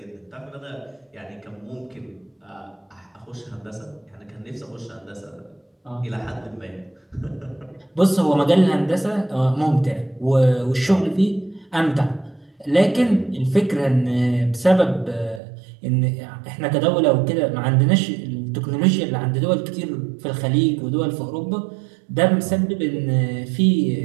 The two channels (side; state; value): left; drops out; at 15.4 s